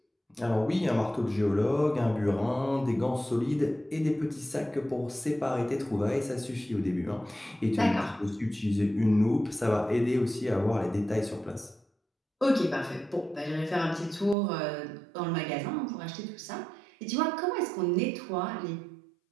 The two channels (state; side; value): drops out; left; at 14.4 s